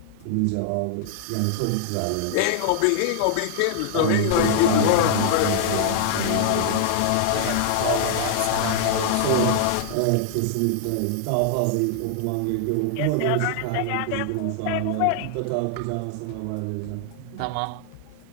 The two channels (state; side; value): different; both; correlation -0.01